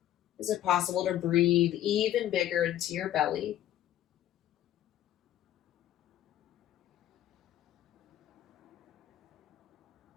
Is it possible to breathe even bigger into your belly?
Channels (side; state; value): right; quieter; 12.4 dB